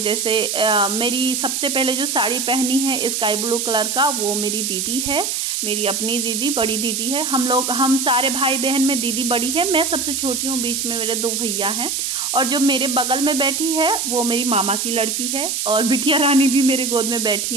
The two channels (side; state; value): right; noise; hiss, 1 dB below the sound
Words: मेरी सबसे पहले जो साड़ी पहनी है स्काई ब्लू कलर का, वो मेरी दीदी है, मेरी अपनी दीदी, बड़ी दीदी है। हम सारे भाई बहन में दीदी बड़ी है, मैं सबसे छोटी हूँ, बीच में मेरे 2 भैया हैं। और जो मेरे बगल में बैठी है वो मेरी मामा की लड़की है, और बिटिया रानी भी मेरे गोद में